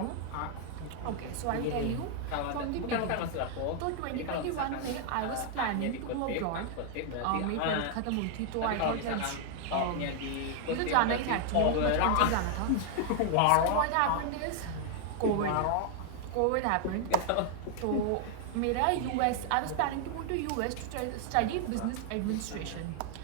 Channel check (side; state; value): both; different; correlation 0.00